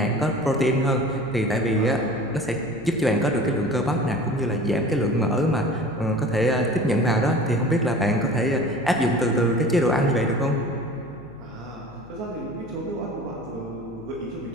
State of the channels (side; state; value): left; noise; hum, 22 dB below the sound